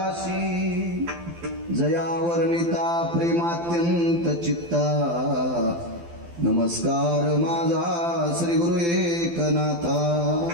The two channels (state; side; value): late; left; 12 ms